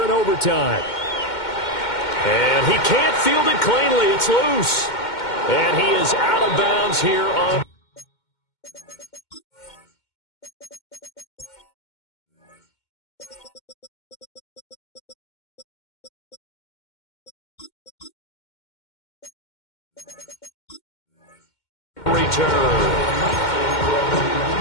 in overtime. And he can't field it cleanly. It's loose. And he is out of bounds here on... return.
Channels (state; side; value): late; right; 2.1 ms